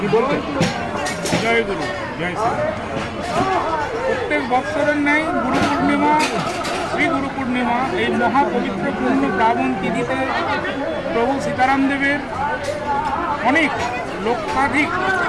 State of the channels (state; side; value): identical; both; correlation 1.00